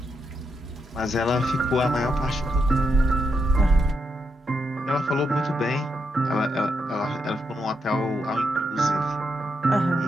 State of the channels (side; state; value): both; normal; correlation 0.82